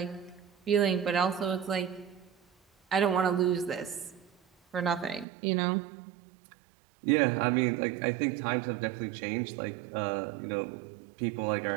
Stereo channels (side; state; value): left; drops out; at 5.2 s